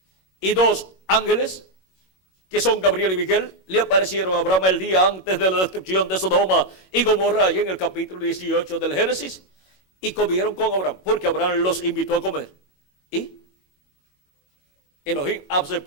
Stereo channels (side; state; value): right; late; 21 ms